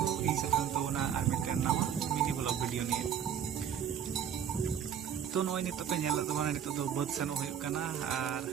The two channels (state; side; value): quieter; left; 8.8 dB